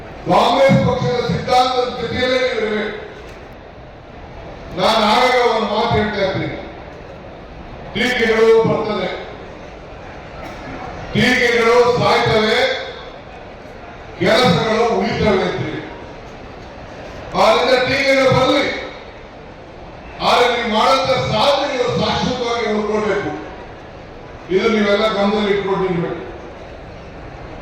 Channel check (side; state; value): both; identical; correlation 1.00